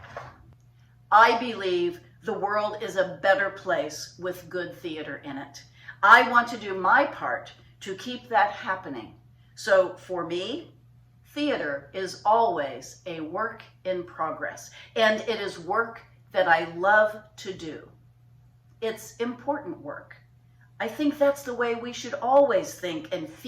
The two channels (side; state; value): both; identical; correlation 1.00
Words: I believe the world is a better place with good theater in it. I want to do my part to keep that happening. So for me, theater is always a work in progress, and it is work that I love to do. It's important work. I think that's the way we should always think and